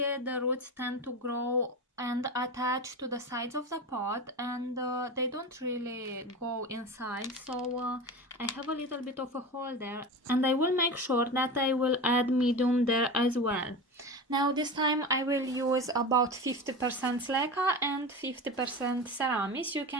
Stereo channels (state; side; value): normal; both; correlation 0.27